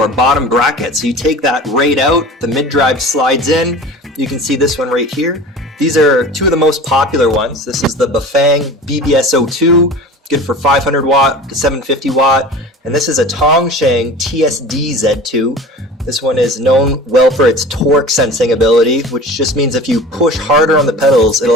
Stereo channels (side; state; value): both; normal; correlation 0.37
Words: bottom bracket. So you take that right out, the mid-drive slides in. You can see this one right here. These are two of the most popular ones. This is the Bafang ebike02, good for 500 watt to 750 watt. And this is a Tongsheng TSD Z2. This one is known well for its torque sensing ability, which just means if you push harder on the pedals,